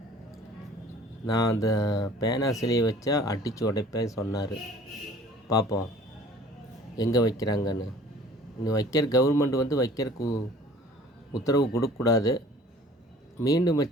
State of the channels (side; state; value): both; normal; correlation 0.49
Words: நான் அந்த பேனா சிலையை வச்சா அடித்து உடைப்பேன் சொன்னார். பார்ப்போம் எங்கே வைக்கிறாங்கன்னு. இன்னும் வைக்கிற கவர்மெண்ட் வந்து வைக்கிறதுக்கு உத்தரவு கொடுக்கக்கூடாது. மீண்டும்